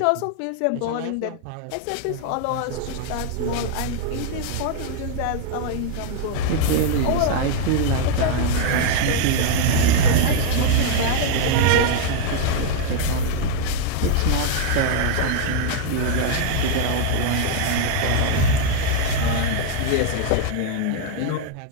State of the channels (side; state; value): both; different; correlation 0.00